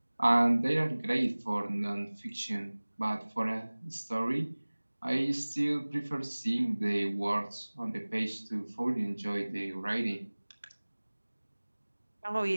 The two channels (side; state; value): both; inverted; correlation -1.00